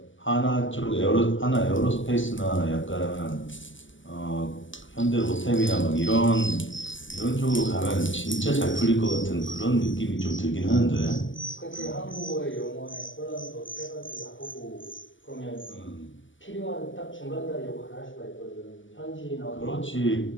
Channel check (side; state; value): right; late; 0.55 ms